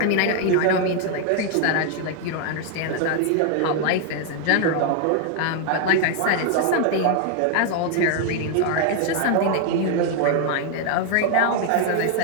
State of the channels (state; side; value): different; both; correlation 0.00